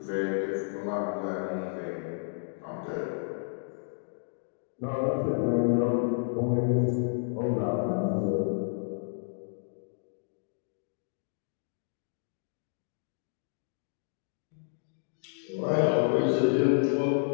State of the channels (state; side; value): silent; right; digital silence